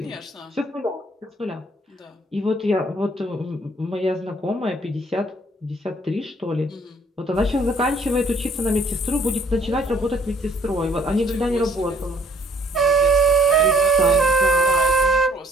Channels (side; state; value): both; normal; correlation 0.60